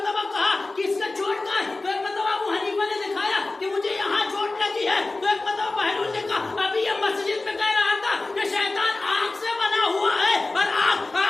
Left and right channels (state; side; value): quieter; right; 3.2 dB